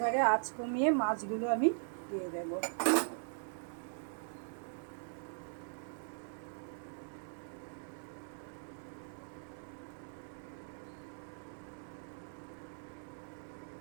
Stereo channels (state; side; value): silent; left; 51 dB below the other